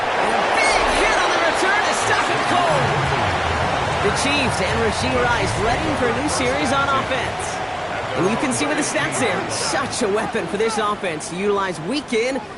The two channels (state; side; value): identical; both; correlation 1.00